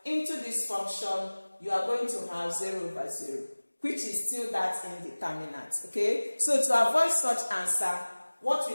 into this function, you are going to have 0 over 0, which is still that indeterminate. Okay, so to avoid such answer, what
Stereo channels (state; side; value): inverted; both; correlation -1.00